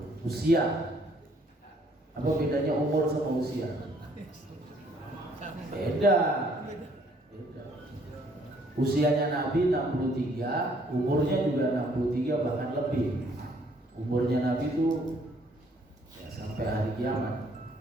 usia. Apa bedanya umur sama usia? Beda. Usianya Nabi 63, umurnya juga 63 bahkan lebih. Umurnya Nabi itu ya sampai hari kiamat.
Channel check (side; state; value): both; normal; correlation 0.63